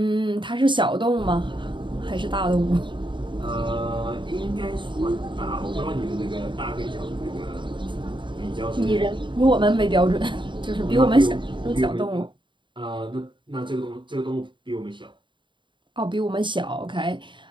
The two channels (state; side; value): late; left; 0.23 ms